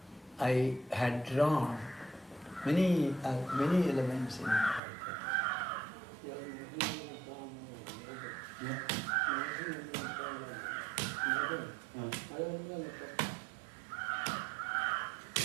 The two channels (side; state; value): left; drops out; at 4.8 s